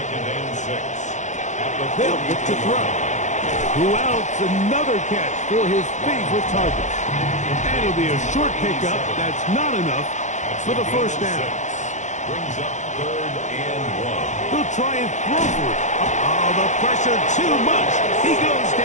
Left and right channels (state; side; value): late; right; 0.35 ms